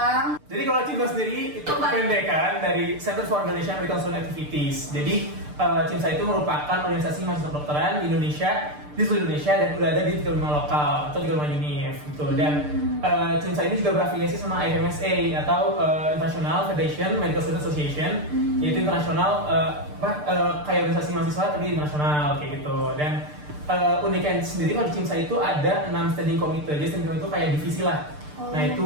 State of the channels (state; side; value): late; left; 6.7 ms